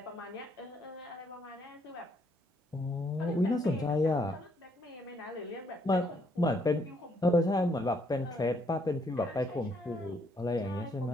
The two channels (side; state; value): both; normal; correlation 0.71